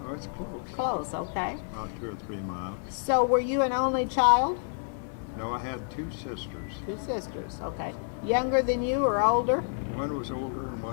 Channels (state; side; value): silent; right; digital silence